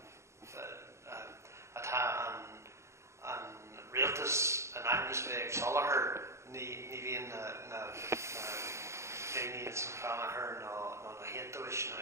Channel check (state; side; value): late; left; 0.14 ms